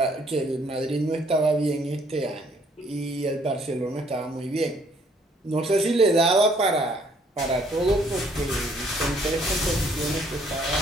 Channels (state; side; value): normal; both; correlation 0.64